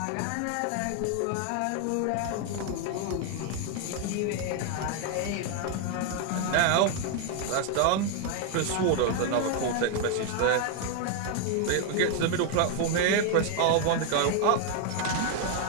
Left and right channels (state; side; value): different; both; correlation 0.00